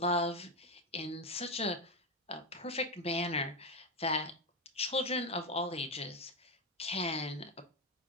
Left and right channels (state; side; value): normal; both; correlation 0.10